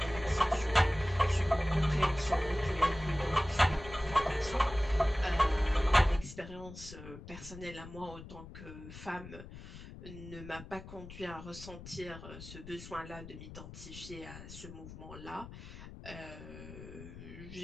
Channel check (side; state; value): left; noise; rumble, 14 dB below the sound